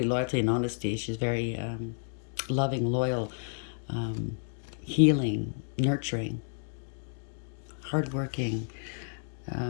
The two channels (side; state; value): right; silent; 57 dB below the other